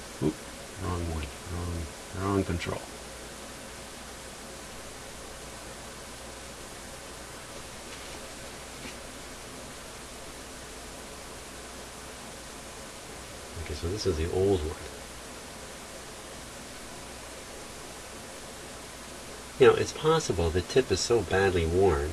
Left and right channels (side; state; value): both; identical; correlation 1.00